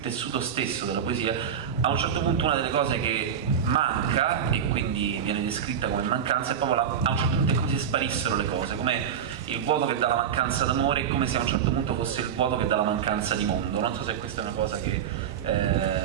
stesso della poesia, a un certo punto una delle cose che manca, e quindi viene descritta come mancanza, è proprio a un certo punto è come se sparissero le cose, come il vuoto che dà la mancanza d'amore, è come se a un certo punto fosse il vuoto che dà la mancanza di mondo. Non so se questa è una cosa che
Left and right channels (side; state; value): left; quieter; 8.2 dB